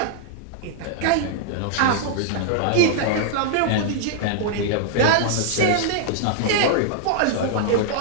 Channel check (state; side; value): different; both; correlation -0.01